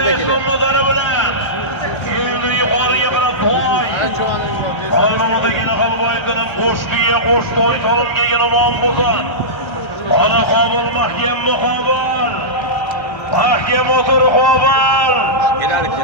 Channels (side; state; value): right; late; 1.3 ms